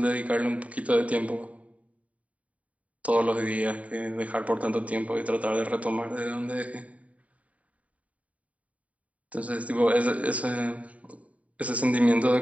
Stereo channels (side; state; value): left; late; 0.068 ms